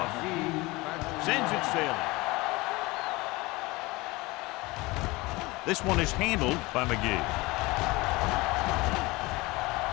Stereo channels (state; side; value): quieter; right; 22.5 dB